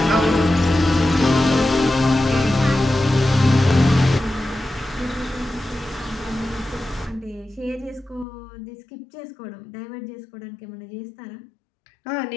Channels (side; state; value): right; drops out; at 8.2 s